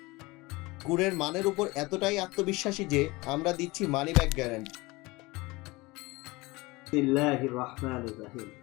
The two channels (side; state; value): right; quieter; 22.7 dB